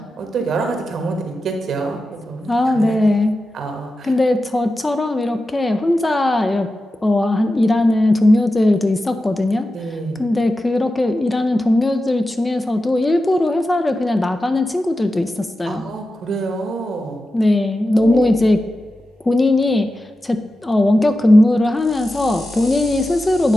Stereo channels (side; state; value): both; normal; correlation 0.92